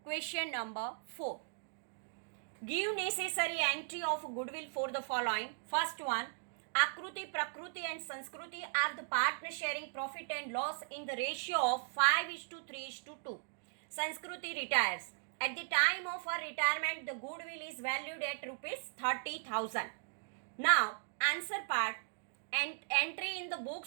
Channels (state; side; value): silent; left; digital silence